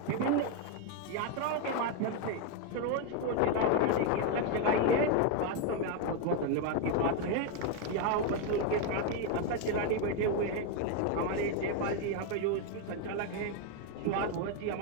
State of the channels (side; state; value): both; different; correlation 0.01